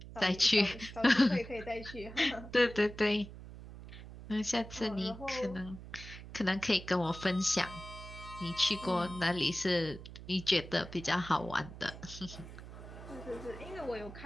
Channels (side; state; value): right; noise; hum, 14 dB below the sound